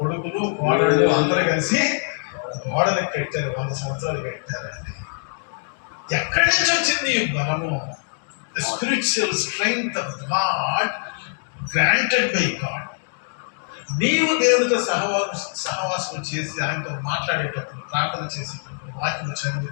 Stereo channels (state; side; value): silent; right; digital silence